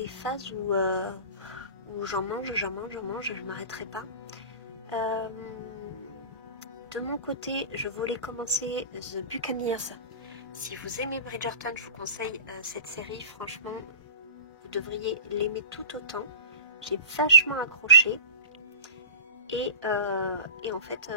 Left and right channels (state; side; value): inverted; both; correlation -0.34